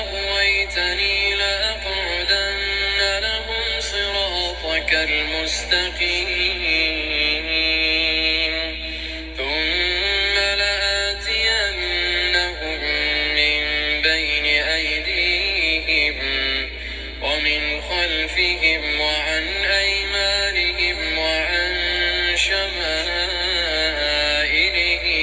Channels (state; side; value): identical; both; correlation 1.00